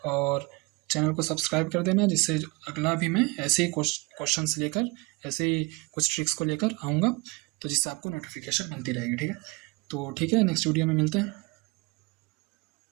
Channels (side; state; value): left; quieter; 26.4 dB